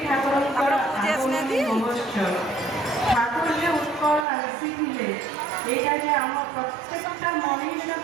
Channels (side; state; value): left; drops out; at 4.2 s